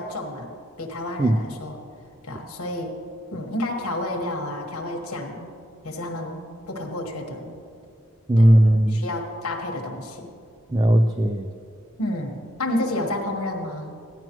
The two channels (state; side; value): normal; both; correlation 0.80